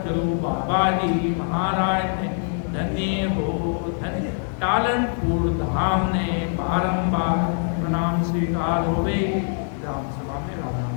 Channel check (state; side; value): silent; right; 59 dB below the other